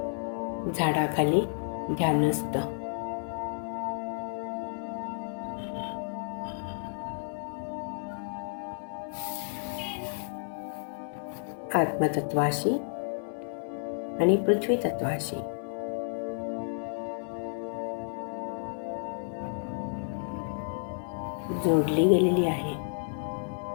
झाडाखाली ध्यानस्थ. आत्मतत्वाशी आणि पृथ्वी तत्वाशी जोडली गेलेली आहे.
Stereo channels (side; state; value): right; silent; 57 dB below the other